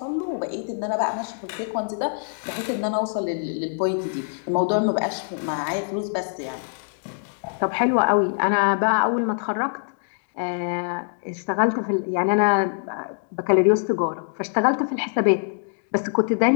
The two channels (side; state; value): right; silent; digital silence